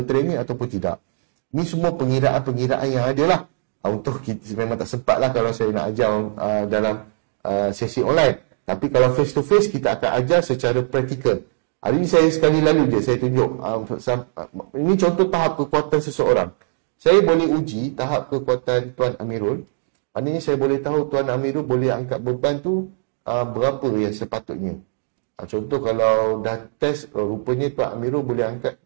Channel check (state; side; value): silent; left; digital silence